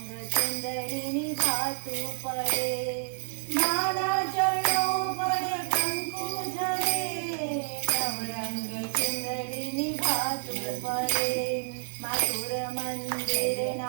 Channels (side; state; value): left; silent; 58 dB below the other